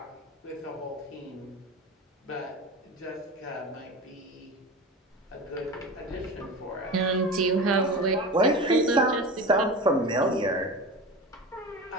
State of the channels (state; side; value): normal; both; correlation 0.30